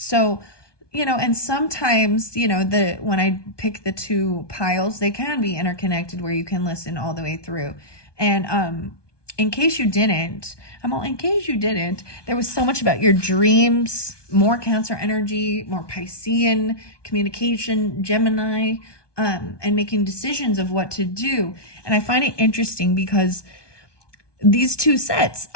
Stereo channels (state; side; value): late; right; 1.2 ms